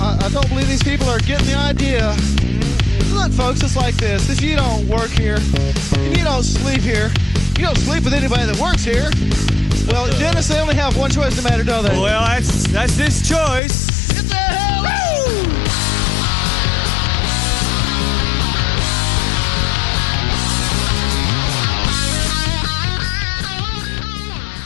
I don't believe these people are getting the idea. Look, folks, it's like this. If you don't work here, and you don't sleep here, you don't sleep with anybody that works here. Well, Dennis, they only have one choice no matter, don't they? Well, that's his choice. Get the hell out!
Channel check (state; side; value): drops out; right; at 13.6 s